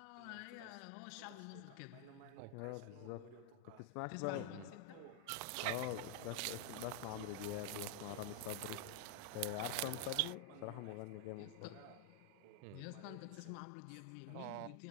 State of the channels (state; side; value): different; both; correlation 0.00